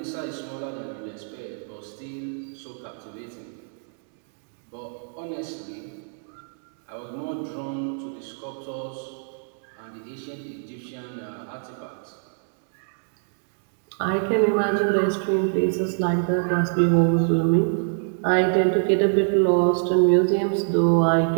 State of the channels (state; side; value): silent; left; digital silence